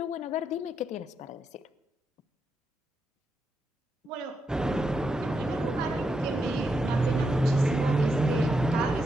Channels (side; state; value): both; normal; correlation 0.83